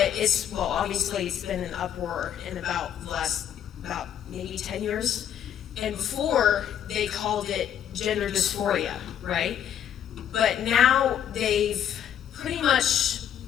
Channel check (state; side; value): quieter; right; 9.7 dB